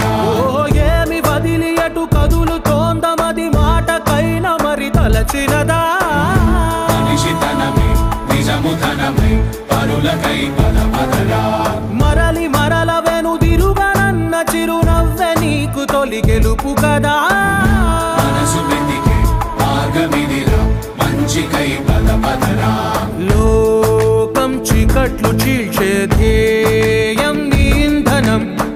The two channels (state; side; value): identical; both; correlation 1.00